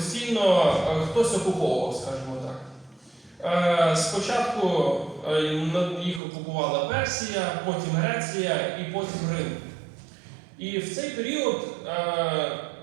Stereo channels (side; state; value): left; drops out; at 6.2 s